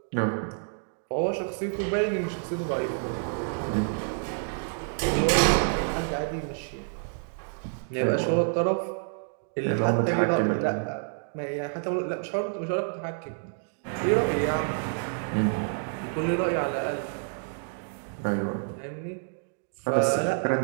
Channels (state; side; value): silent; left; digital silence